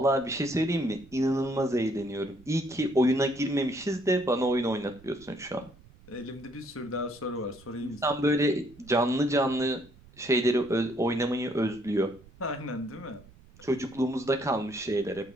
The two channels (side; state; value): right; noise; rumble, 24 dB below the sound